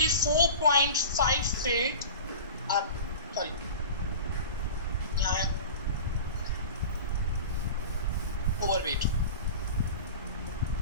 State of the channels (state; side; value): inverted; both; correlation -0.34